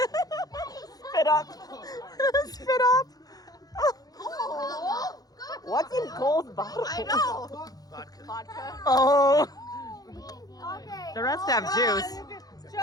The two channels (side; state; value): right; late; 0.18 ms